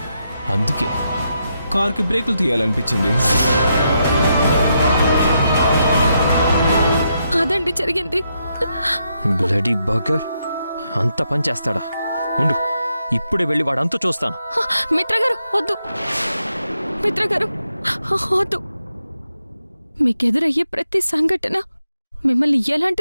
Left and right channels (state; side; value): inverted; both; correlation -0.82